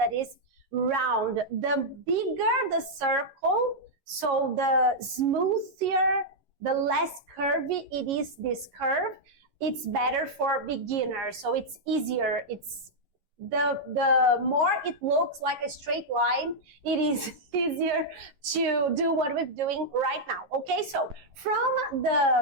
is round. The bigger the circle, so the smoother, the less curvy it is, this curve, it's better for beginners. So it's easier. It's the more it looks like a straight line, it is easier to do what we're doing right now. Okay, so from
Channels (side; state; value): left; late; 11 ms